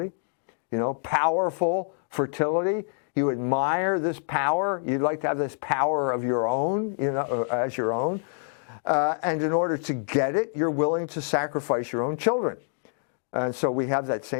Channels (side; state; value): right; silent; 61 dB below the other